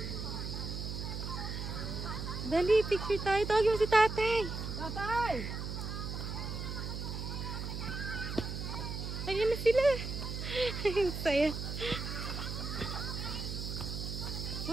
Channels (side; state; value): right; noise; hum, 5 dB below the sound